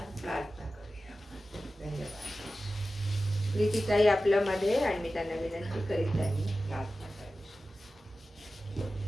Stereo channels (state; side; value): normal; both; correlation 0.94